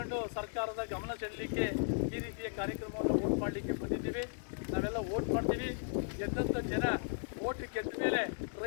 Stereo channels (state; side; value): silent; right; 54 dB below the other